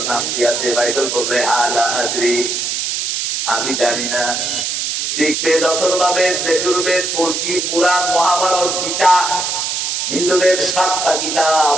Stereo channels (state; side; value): noise; right; hiss, 1 dB below the sound